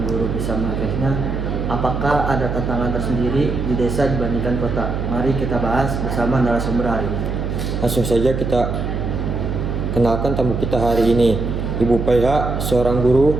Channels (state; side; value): noise; right; hum, 2 dB below the sound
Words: guru bisa mengaksesnya? Apakah ada tantangan tersendiri di desa dibandingkan kota? Mari kita bahas bersama narasumber hari ini. Langsung saja kita kenalkan tamu kita hari ini, Ibu PH, seorang guru